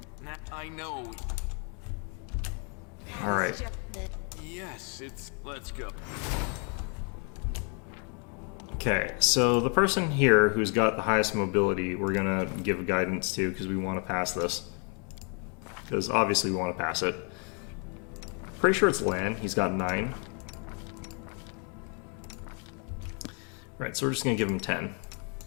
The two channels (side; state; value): right; quieter; 37.6 dB